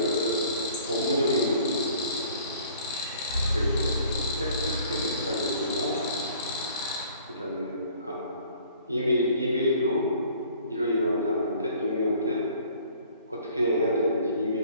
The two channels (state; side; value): inverted; both; correlation -0.54